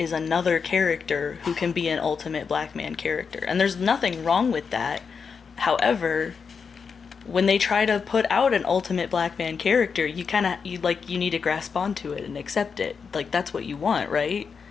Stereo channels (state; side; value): quieter; right; 5.8 dB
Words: another character who can be an ultimate black man character. And there's nothing wrong with that. However, when they try to put out an ultimate black man character, you need to grasp onto it and accept it. Like, that's what you want, right?